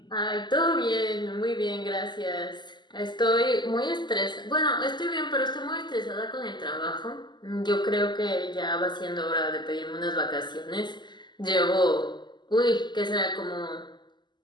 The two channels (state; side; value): late; right; 0.21 ms